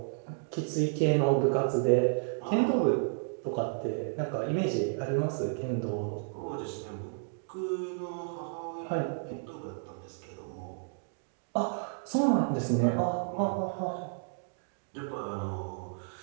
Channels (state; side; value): silent; left; digital silence